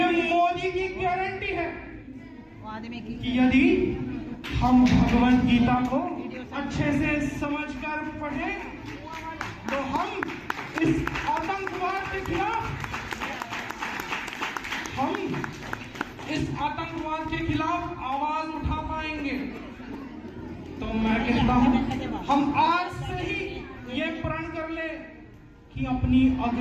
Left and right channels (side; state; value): both; identical; correlation 1.00